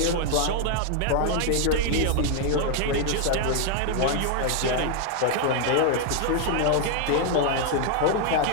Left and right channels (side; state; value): both; different; correlation 0.00